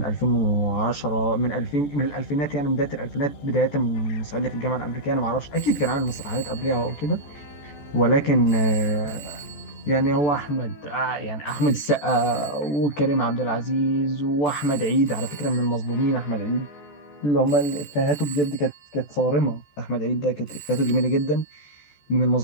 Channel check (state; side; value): late; right; 14 ms